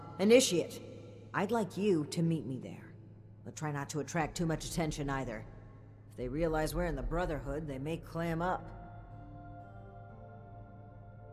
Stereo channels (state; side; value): identical; both; correlation 1.00